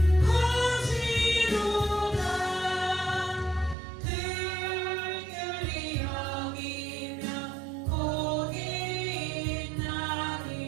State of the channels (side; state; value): left; drops out; at 3.8 s